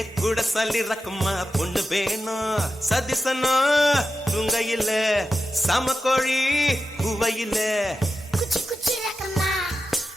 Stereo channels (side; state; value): both; normal; correlation 0.90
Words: கூட சல்லி ரக்கம்மா பொண்ணு வேணும் சதிசனா துங்கையில சமக்கோழி குவையில குச்சி குச்சி ரக்கம்மா